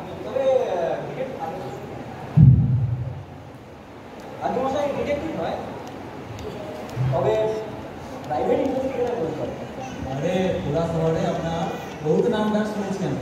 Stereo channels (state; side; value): identical; both; correlation 1.00